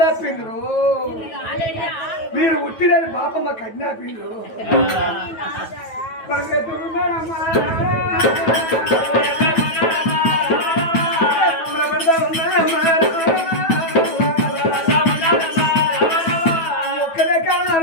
మీరు ఉట్టిరని బాపమ్మ కన్నాపిండ్రు ఎదురున్నాడమ్మా ఒక్కడే కాదు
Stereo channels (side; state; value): right; late; 9.2 ms